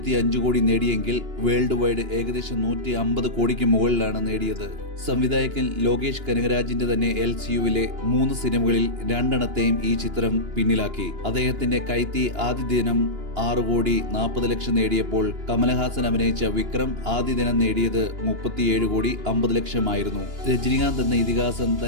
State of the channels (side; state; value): left; late; 2.9 ms